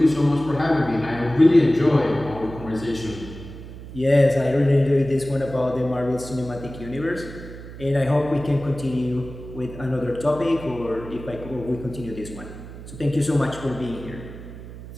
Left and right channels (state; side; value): noise; right; hum, 13 dB below the sound